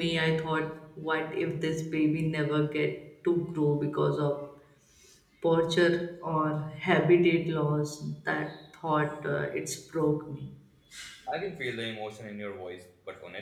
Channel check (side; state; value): both; identical; correlation 1.00